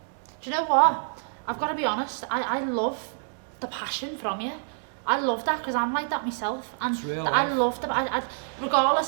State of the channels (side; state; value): left; silent; digital silence